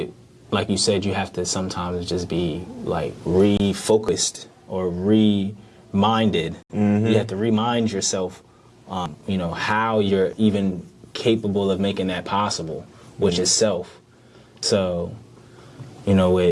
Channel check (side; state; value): both; identical; correlation 1.00